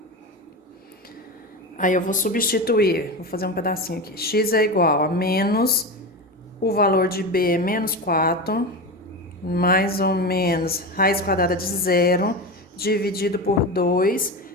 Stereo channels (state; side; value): normal; both; correlation 0.22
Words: Aí eu vou substituir, vou fazer um pedacinho aqui. X é igual a menos, o valor de b é menos 4, mais ou menos raiz quadrada de zero, dividido por 2,